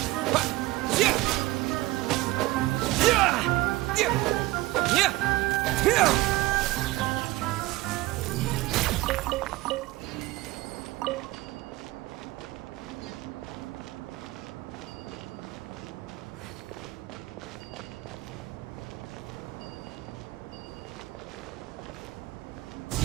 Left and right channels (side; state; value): left; quieter; 19.2 dB